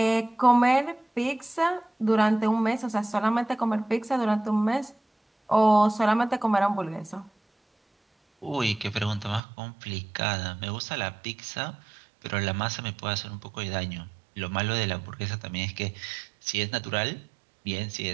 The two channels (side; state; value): left; drops out; at 9.4 s